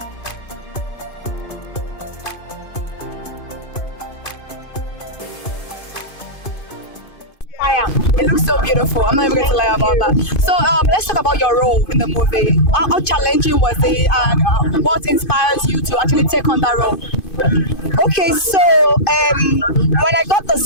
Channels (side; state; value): right; late; 2.5 ms